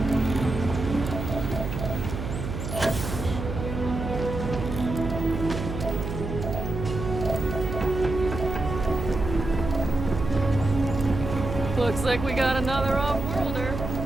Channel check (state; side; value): noise; right; hum, 5 dB below the sound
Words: Looks like we got another off-worlder.